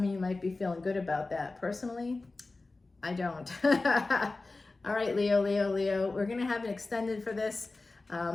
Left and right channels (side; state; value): right; quieter; 3.4 dB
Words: of you might be feeling good about that. Personally, I don't. All right, Leo, we're going to have an extended for this.